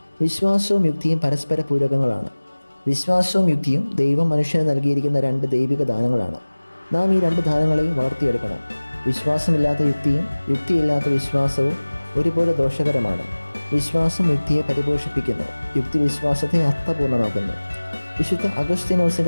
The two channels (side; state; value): both; inverted; correlation -1.00